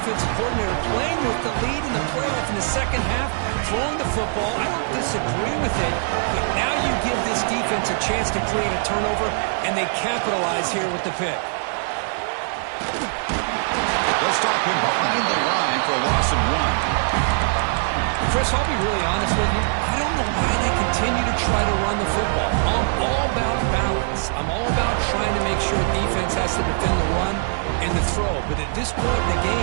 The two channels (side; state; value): left; silent; digital silence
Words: coordinator, playing with the lead in the playoff in the second half, throwing the football. I don't disagree with it, but now you give this defense a chance to create a turnover, and they capitalize here with the pick. They'll stop him behind the line for a loss of 1. Chris, I'll be really honest with you. I don't know why they continue to try to run the football. I'm all about balance. I'm all about trying to make sure defense has to defend the run and the throw. But at this point in the